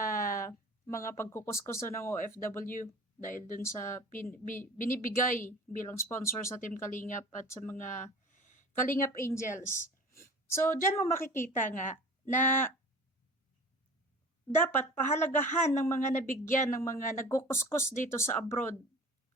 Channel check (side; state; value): both; normal; correlation 0.41